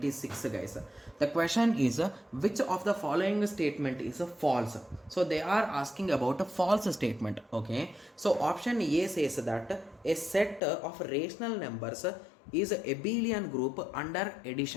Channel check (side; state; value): right; drops out; at 10.6 s